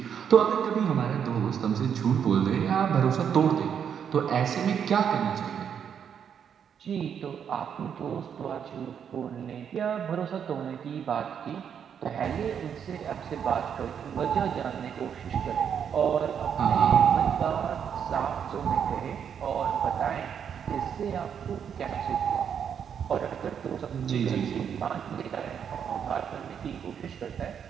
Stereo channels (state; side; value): quieter; left; 7.9 dB